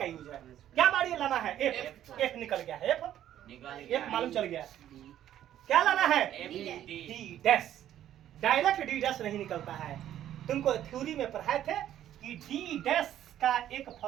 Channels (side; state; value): left; quieter; 11.6 dB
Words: यूज है। क्या बाड़ी लाना है, एफ। एफ निकल गया है, एफ मालूम चल गया। क्या लाना है, D dash. Direct D dash नहीं निकलता है। तुमको थ्योरी में पढ़ाए थे कि डी डैश का एक